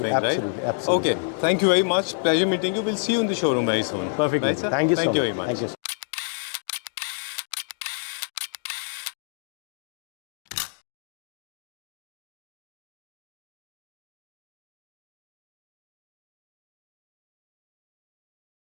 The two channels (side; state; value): right; silent; digital silence